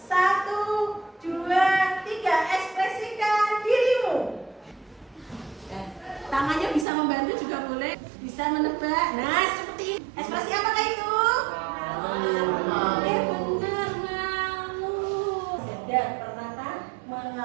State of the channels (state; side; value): drops out; left; at 6.9 s